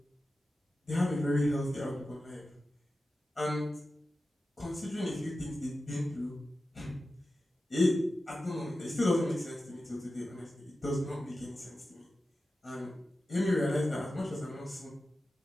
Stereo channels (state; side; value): normal; both; correlation 0.93